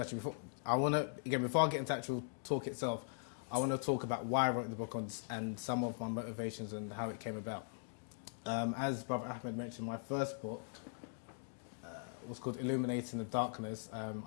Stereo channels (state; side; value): silent; right; digital silence